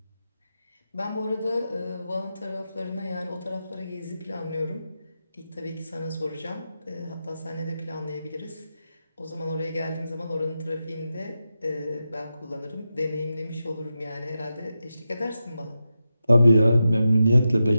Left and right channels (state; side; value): inverted; both; correlation -0.90